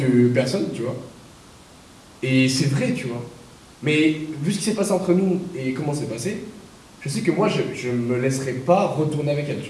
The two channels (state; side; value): identical; both; correlation 1.00